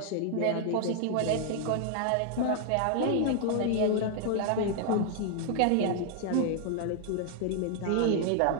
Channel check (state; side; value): different; both; correlation 0.00